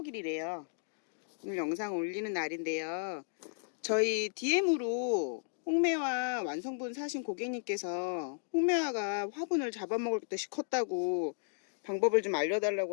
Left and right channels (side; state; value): right; silent; digital silence